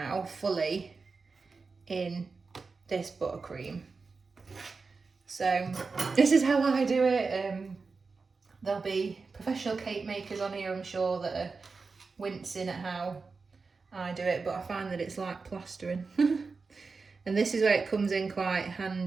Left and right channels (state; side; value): quieter; left; 4.4 dB